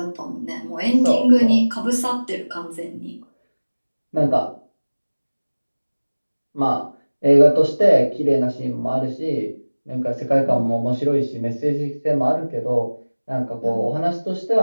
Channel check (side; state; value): both; inverted; correlation -1.00